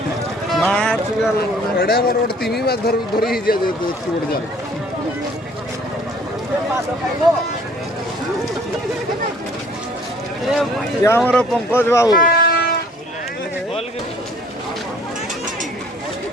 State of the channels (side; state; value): both; normal; correlation 0.55